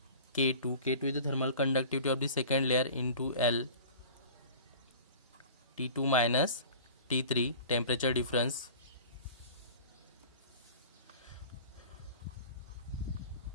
K2 is the thermal conductivity of the second layer into L T2 minus T3 temperature difference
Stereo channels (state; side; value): inverted; both; correlation -0.41